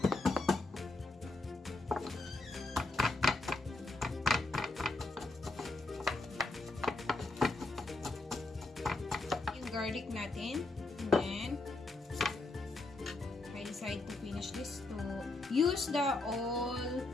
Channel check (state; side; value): quieter; right; 3.1 dB